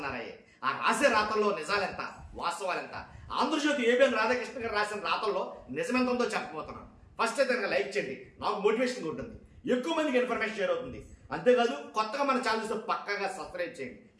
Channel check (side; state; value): both; identical; correlation 1.00